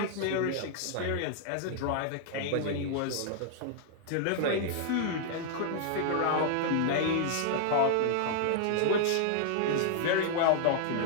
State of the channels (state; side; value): different; both; correlation -0.01